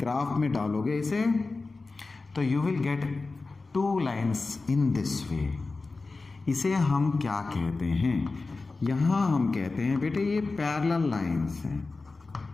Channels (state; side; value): quieter; right; 3.7 dB